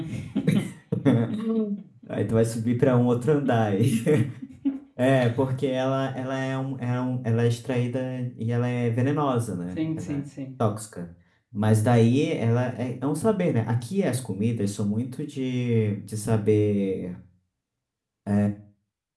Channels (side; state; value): both; identical; correlation 1.00